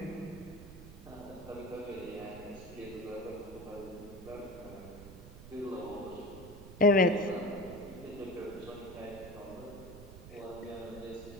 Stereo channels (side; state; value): right; noise; rumble, 15 dB below the sound